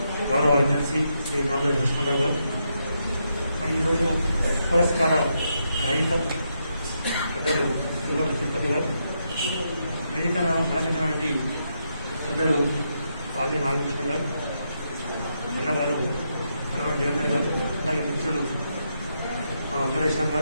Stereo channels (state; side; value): inverted; both; correlation -0.81